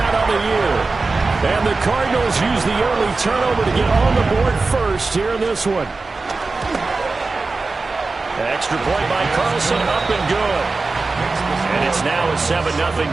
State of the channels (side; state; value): left; quieter; 3.8 dB